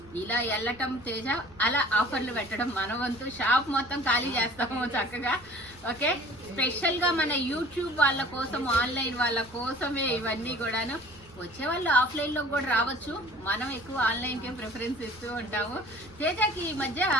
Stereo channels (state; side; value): noise; right; rumble, 25 dB below the sound